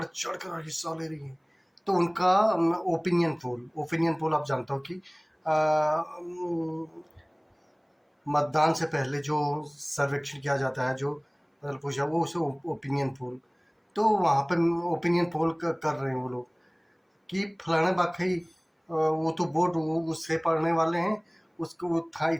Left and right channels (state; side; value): identical; both; correlation 1.00